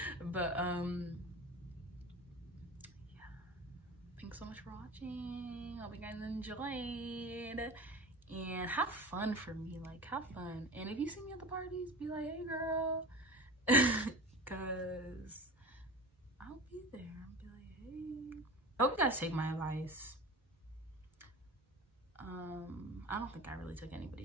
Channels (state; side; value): normal; both; correlation 0.33